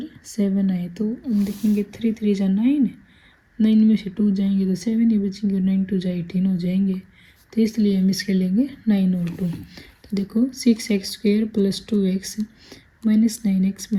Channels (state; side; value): identical; both; correlation 1.00